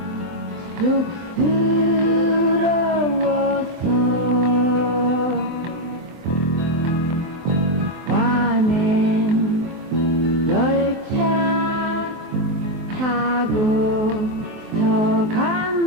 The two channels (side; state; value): left; late; 24 ms